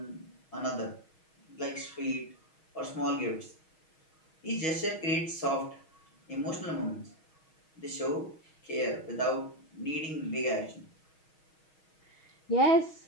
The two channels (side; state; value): right; late; 6.3 ms